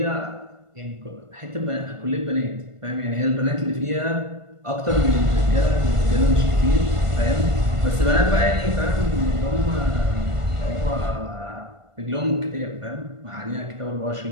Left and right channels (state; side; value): late; left; 1.5 ms